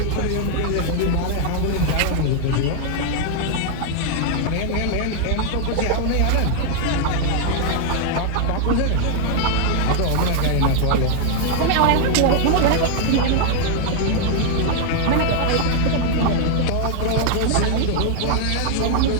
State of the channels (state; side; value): different; both; correlation 0.00